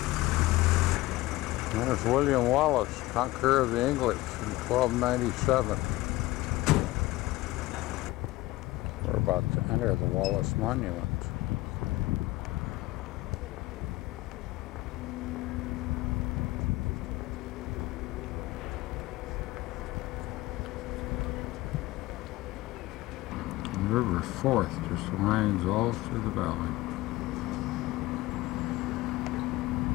There's William Wallace, conqueror of the English in 1297. We're about to enter the Wallace Monument. The River Forth just winds all through the valley.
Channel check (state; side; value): quieter; right; 18.7 dB